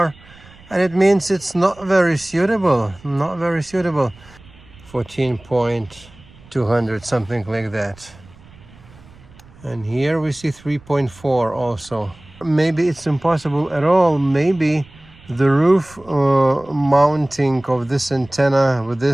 and it means it's not very suitable. 14.200, something like that. And here we see 3.4 also. Maybe it's impossible at all. Maybe the roof mounting of this antenna with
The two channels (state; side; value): noise; right; rumble, 24 dB below the sound